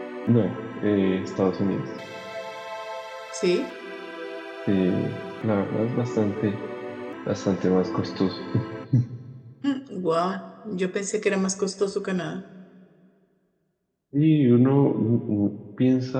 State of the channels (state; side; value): identical; both; correlation 1.00